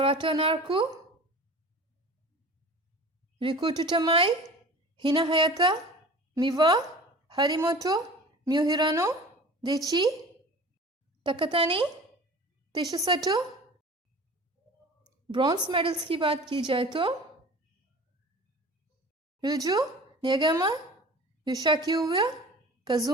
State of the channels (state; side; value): normal; both; correlation 0.40